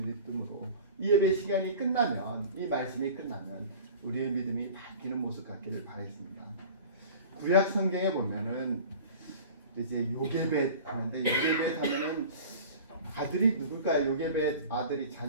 이 예배 시간이 끝나면, 이 말씀이 끝나면 우리의 믿음이 바뀌는 모습 같기를 바라겠습니다. 구약 성경에 보면은 이제 요게벳 하는데, 요게벳 하면은 아들이 누굴까요? 요게벳 아들이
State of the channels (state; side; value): inverted; both; correlation -0.40